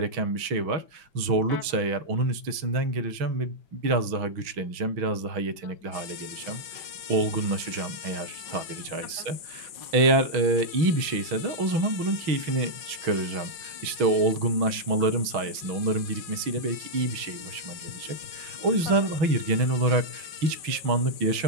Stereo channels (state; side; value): late; left; 6.2 ms